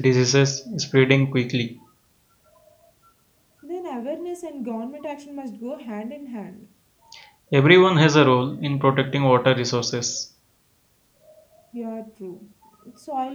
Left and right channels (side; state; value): both; identical; correlation 1.00